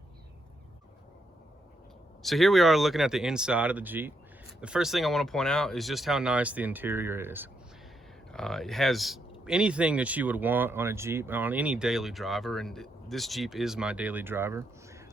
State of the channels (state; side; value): normal; both; correlation 0.79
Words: So here we are looking at the inside of the Jeep. The first thing I want to point out is just how nice the interior is. It has anything that you would want on a Jeep, on any daily driver, and this Jeep is my daily driver.